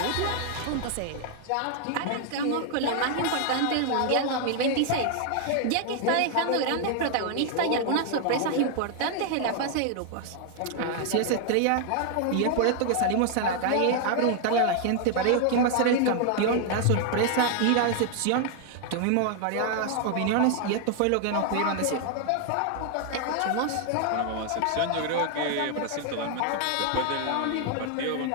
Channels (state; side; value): different; both; correlation 0.00